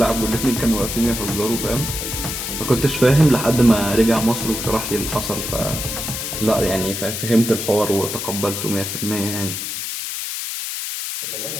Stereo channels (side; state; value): left; noise; hiss, 4 dB below the sound